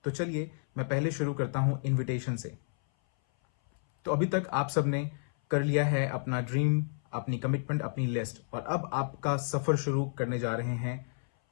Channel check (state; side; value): silent; right; 57 dB below the other